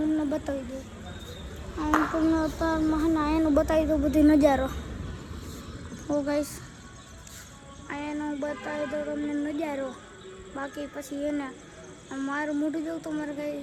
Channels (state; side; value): identical; both; correlation 1.00